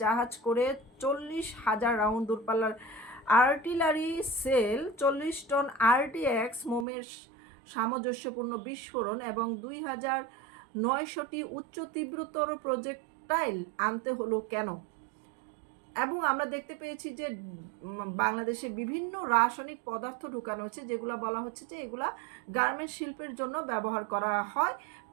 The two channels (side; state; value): left; drops out; at 6.9 s